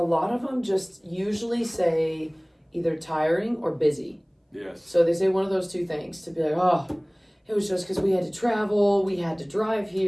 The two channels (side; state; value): both; identical; correlation 1.00